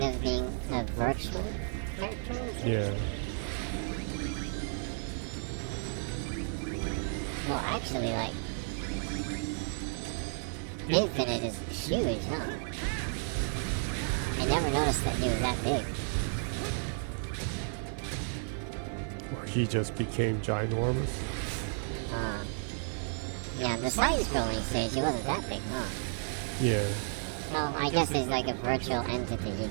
of being a virtual character? Yeah. Well, actually, like, Infinite is huge, huh? I never noticed that he was that big. Or he just became ginormous. Yeah, the side-scrolling stage, he wasn't that big, huh? Yeah. Well, I guess he's like a virtual entity. He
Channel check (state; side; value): silent; left; 56 dB below the other